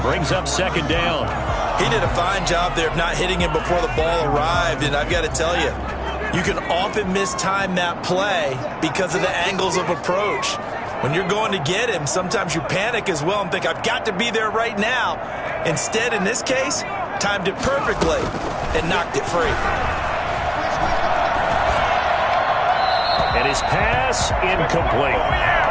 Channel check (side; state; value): both; identical; correlation 1.00